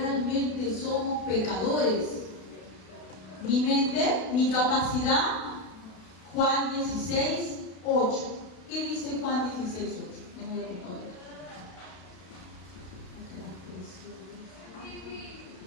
somos pecadores? ¿Mi mente? ¿Mi capacidad? Juan 16:8. ¿Qué dice Juan 16:8? No voy a poner.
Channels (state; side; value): late; right; 32 ms